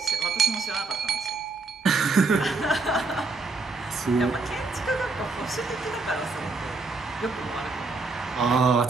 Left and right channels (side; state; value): left; quieter; 3.8 dB